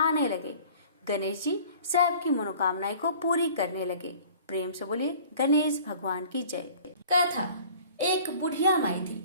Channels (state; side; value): inverted; both; correlation -0.48